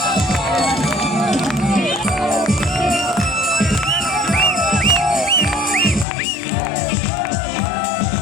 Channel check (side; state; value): right; drops out; at 6.1 s